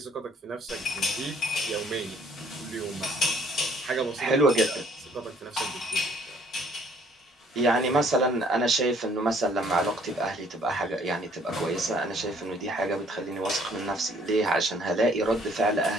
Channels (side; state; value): both; normal; correlation 0.61